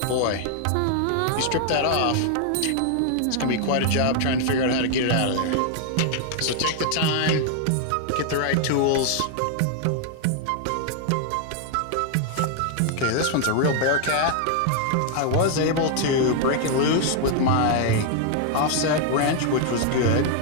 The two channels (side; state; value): both; different; correlation 0.00